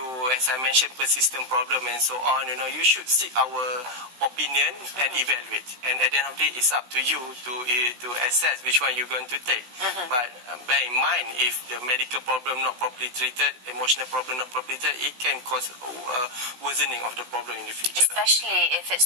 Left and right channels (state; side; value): late; left; 16 ms